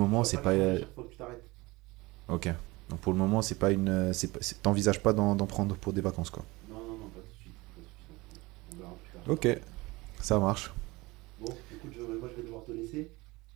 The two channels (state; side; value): quieter; left; 22.1 dB